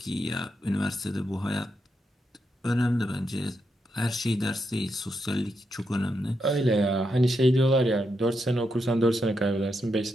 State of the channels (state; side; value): normal; both; correlation 0.83